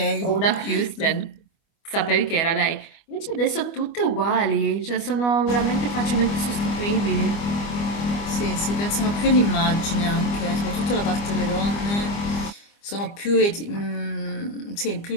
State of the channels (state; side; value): late; right; 25 ms